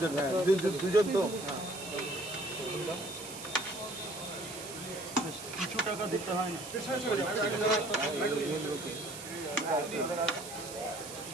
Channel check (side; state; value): right; noise; hiss, 11 dB below the sound